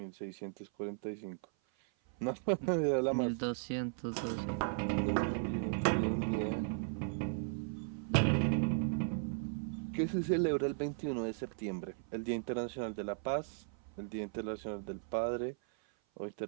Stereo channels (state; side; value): silent; left; 53 dB below the other